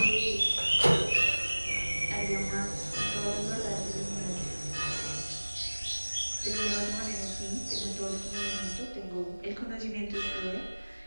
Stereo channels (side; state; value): both; inverted; correlation -1.00